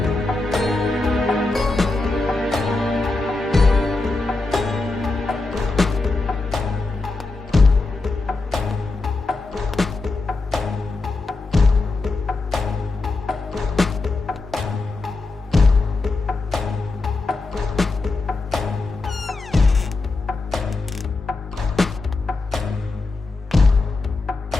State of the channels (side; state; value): right; quieter; 3.4 dB